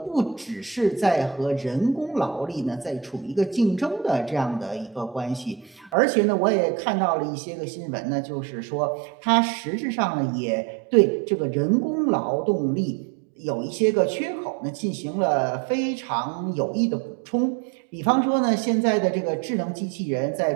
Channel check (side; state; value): left; drops out; at 6.0 s